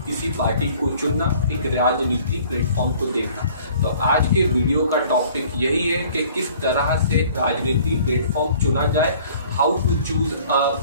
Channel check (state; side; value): inverted; both; correlation -0.53